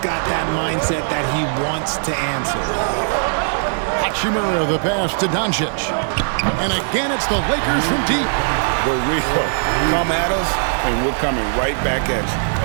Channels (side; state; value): left; silent; digital silence